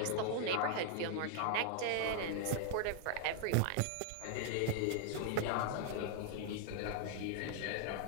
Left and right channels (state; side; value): different; both; correlation 0.00